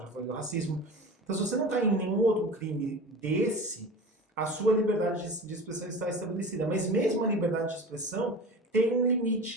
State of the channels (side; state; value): both; normal; correlation 0.34